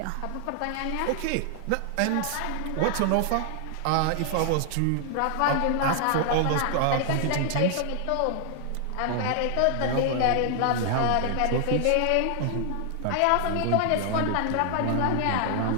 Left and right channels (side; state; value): both; different; correlation 0.00